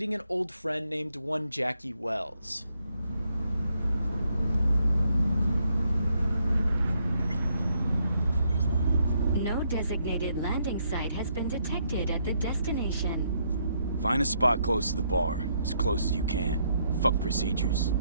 an old friend named one Jackie Wells. No designated landing site has been detected at the destination. Find a spot close to the bar, as close as you can. Fuck procedures.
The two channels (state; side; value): inverted; both; correlation -0.74